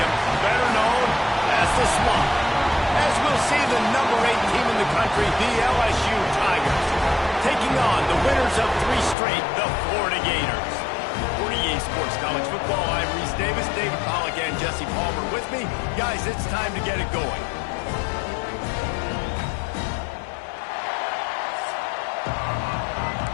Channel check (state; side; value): drops out; right; at 9.2 s